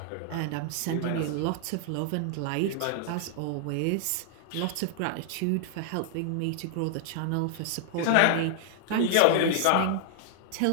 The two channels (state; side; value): different; both; correlation 0.00